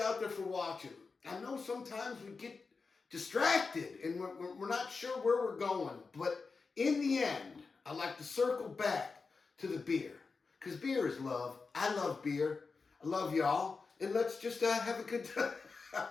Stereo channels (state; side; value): quieter; right; 4.5 dB